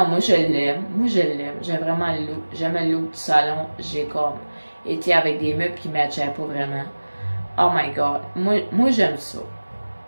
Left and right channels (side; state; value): both; inverted; correlation -1.00